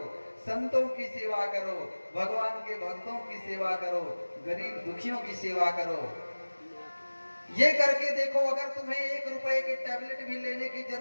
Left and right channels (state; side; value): inverted; both; correlation -1.00